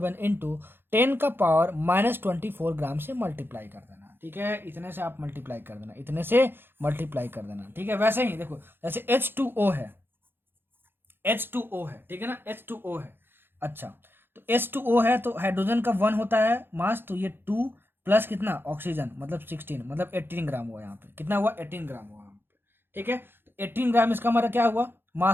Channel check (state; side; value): late; left; 0.10 ms